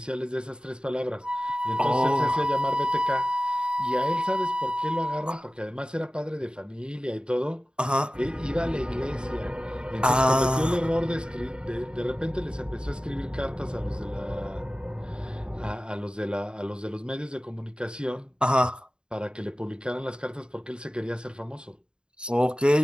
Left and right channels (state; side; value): late; left; 0.050 ms